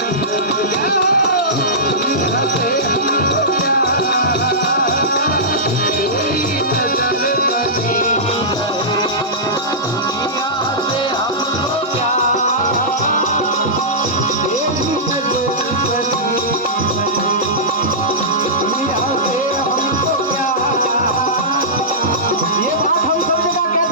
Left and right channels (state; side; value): normal; both; correlation -0.16